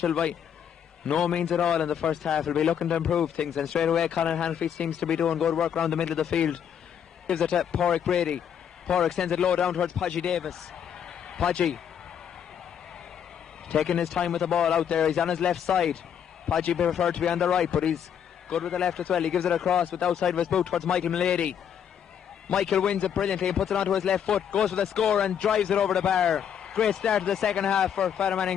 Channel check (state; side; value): quieter; right; 8.6 dB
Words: by no means at all in the first half, will be looking to improve things, and straight away Colin Hannafy seems to be doing good work around the middle of the field. Gives it to Porrick Brady. Porrick sends it low down towards Podgy Davis. Podgy taking his time with the ball out there. He's on his left side. Podgy preferred to be on the right, but he's good with the left as well. He gives it across with the outside of his boot towards Michael Mulady. Michael wins it brilliantly and puts it onto his left foot, goes for the score and drives it over the bar. Great start to the second half for Fatherman